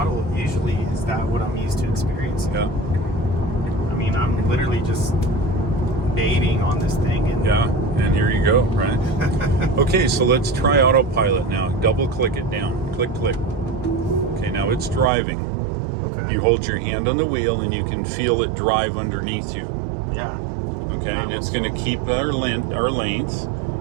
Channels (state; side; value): drops out; left; at 15.1 s